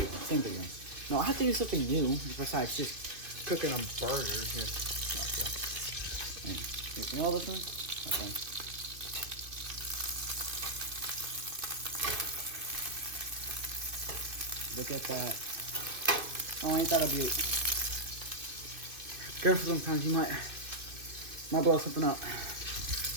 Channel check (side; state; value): left; late; 2.5 ms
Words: No, I have to do something new besides just cooking a burger. Here. You know this one? Okay. Look at that. Oh, ain't that a beaut? Careful, sometimes you might blow something up.